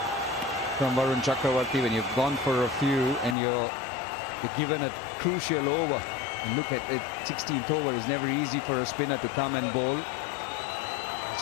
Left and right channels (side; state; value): right; drops out; at 3.4 s